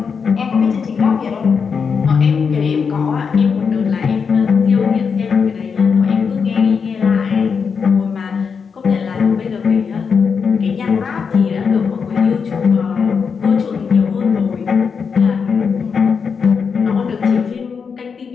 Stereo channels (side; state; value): right; quieter; 5.9 dB